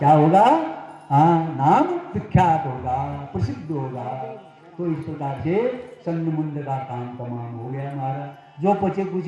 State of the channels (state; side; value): identical; both; correlation 1.00